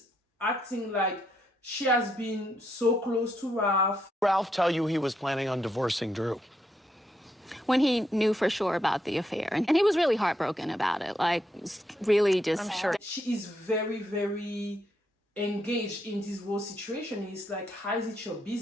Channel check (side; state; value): both; normal; correlation 0.78